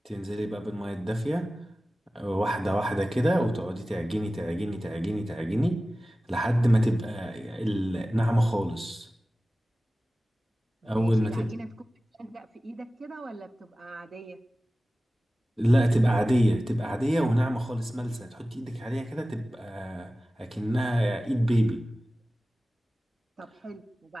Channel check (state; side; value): normal; both; correlation 0.96